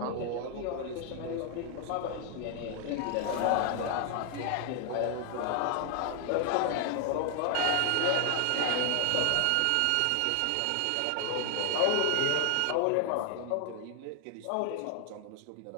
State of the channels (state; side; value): different; both; correlation 0.00